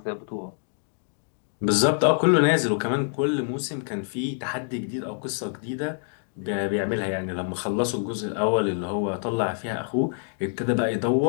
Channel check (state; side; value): silent; right; digital silence